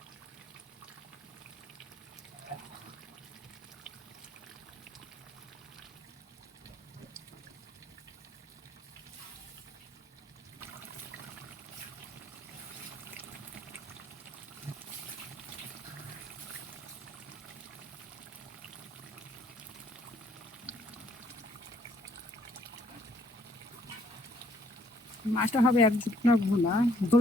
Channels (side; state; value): both; normal; correlation 0.66